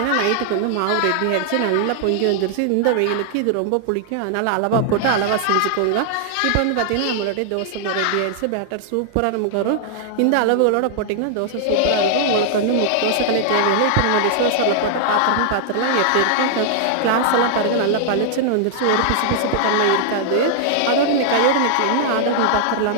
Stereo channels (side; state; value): both; different; correlation -0.01